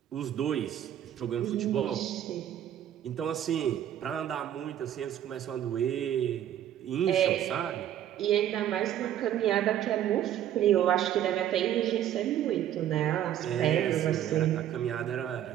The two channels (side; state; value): left; quieter; 11.2 dB